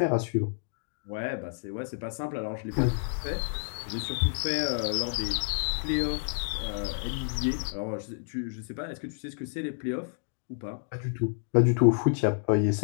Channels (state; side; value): silent; right; digital silence